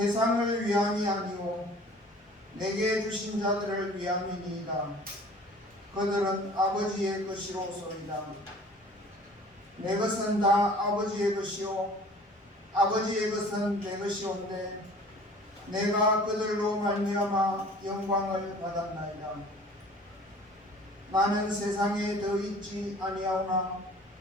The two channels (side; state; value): both; normal; correlation 0.48